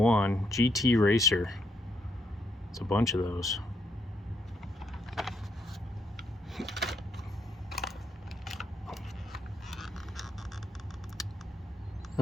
GT Racer. It's a bunch of those.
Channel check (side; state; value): both; normal; correlation 0.76